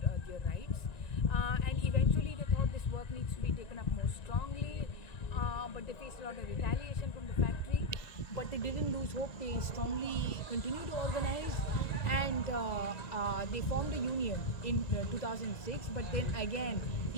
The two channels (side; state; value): right; late; 1.9 ms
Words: their rights. And eventually they thought this work needs to be taken up more strongly, but they faced a lot of retaliation from the factory. But they didn't lose hope. They strongly continued to organize, and they formed a union in 2006. But then again,